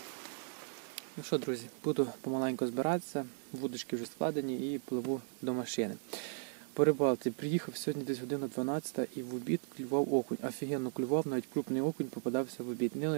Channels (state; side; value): silent; left; digital silence